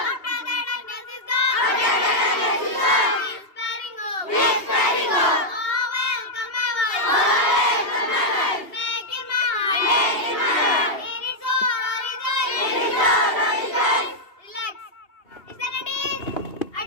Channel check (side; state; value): right; late; 2.8 ms